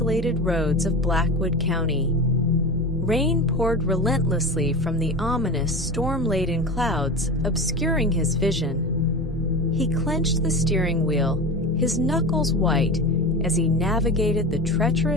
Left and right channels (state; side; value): normal; both; correlation 0.27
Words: roads of Blackwood County. Rain poured relentlessly from the ominous, storm-laden clouds, obscuring his vision. He clenched the steering wheel, his knuckles white, as he navigated the